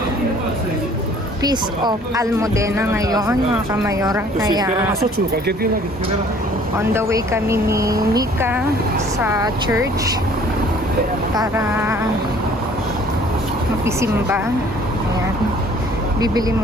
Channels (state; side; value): normal; both; correlation 0.54